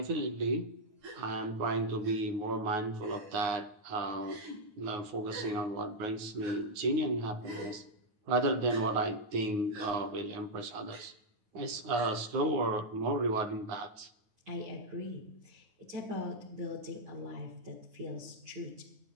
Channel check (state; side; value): late; left; 9.4 ms